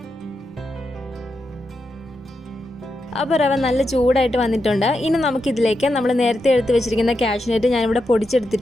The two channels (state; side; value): normal; both; correlation 0.86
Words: അപ്പോൾ റവ നല്ല ചൂടായിട്ട് വന്നിട്ടുണ്ട്. ഇനി നമുക്കിതിലേക്ക് നമ്മൾ നേരത്തെ എടുത്ത് വെച്ചിരിക്കുന്ന കാഷ്യൂനട്ട് ഞാനിവിടെ